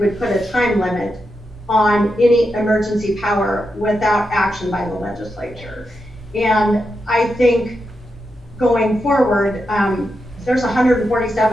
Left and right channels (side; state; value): left; noise; hum, 26 dB below the sound